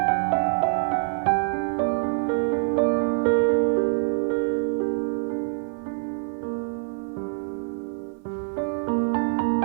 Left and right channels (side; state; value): left; silent; 62 dB below the other